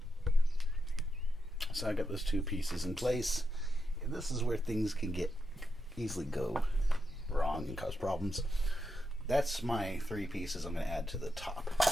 So I got those two pieces in place, and this is where things can easily go wrong and cause problems. That's my three pieces I'm going to add to the top.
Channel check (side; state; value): both; normal; correlation 0.85